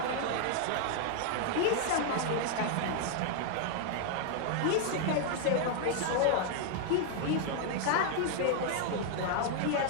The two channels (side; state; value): both; different; correlation 0.00